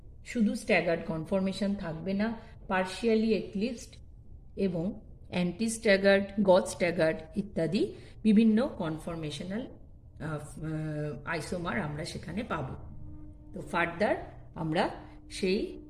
শুধু স্ট্যাগার্ড কনফরমেশন থাকবে না, পার্শিয়ালি এক্লিপসড এবং অ্যান্টি স্ট্যাগার্ড, গজ স্ট্যাগার্ড ইত্যাদি বিভিন্ন কনফরমেশনাল আইসোমার আমরা সেখানে পাব। তো ফার্দার আমরা সেই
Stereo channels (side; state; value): both; identical; correlation 1.00